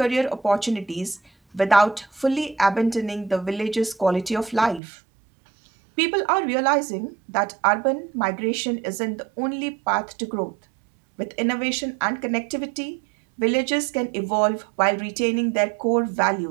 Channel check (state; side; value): drops out; left; at 4.8 s